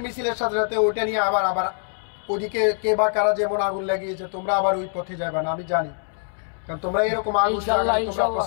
মিছিলের সাথে সাথে ওইটা নিয়ে আবার ওদিকে কে বা কারা যেমন আগুন লাগিয়েছে, তোমরা আবার ওই পথে যাবে না, আমি জানি, কারণ তোমরা এরকম আগুন লাগানো তোমরা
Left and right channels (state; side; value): silent; right; 63 dB below the other